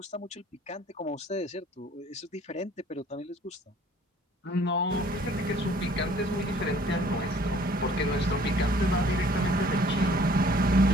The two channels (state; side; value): normal; both; correlation 0.56